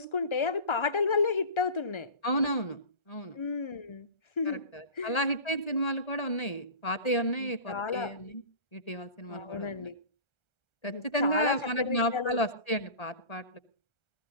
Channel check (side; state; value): right; late; 1.3 ms